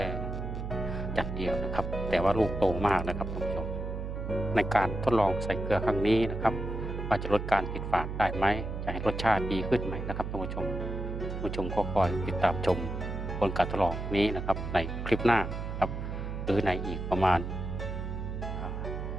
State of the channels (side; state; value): right; noise; hum, 5 dB below the sound